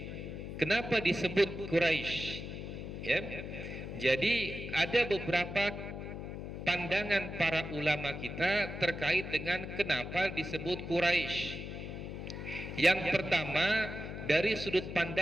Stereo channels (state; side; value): noise; left; hum, 8 dB below the sound